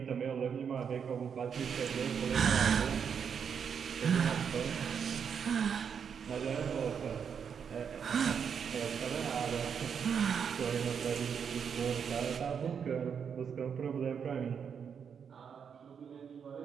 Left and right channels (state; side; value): quieter; left; 7.1 dB